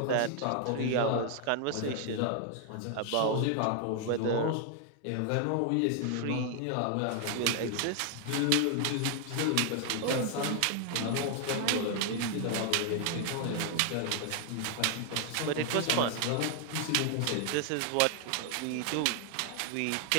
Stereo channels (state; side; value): different; both; correlation 0.00